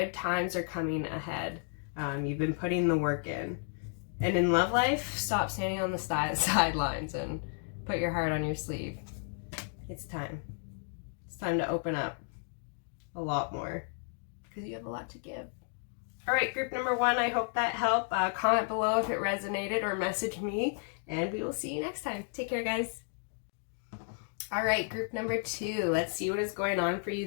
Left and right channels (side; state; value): right; silent; 56 dB below the other